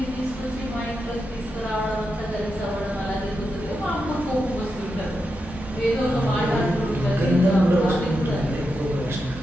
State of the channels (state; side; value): normal; both; correlation 0.87